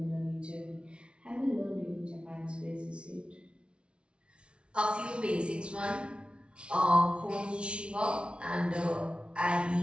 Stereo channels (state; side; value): late; left; 0.058 ms